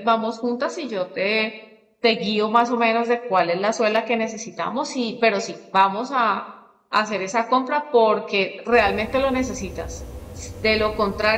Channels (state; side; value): identical; both; correlation 1.00